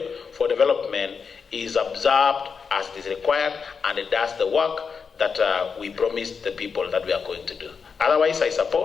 for development is observed as is required and it does the work that we promised the people that we are going to do. Otherwise, I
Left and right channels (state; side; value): quieter; right; 5.7 dB